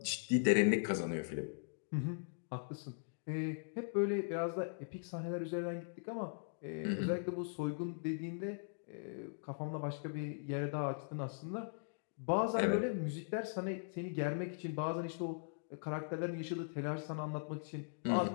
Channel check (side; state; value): right; silent; digital silence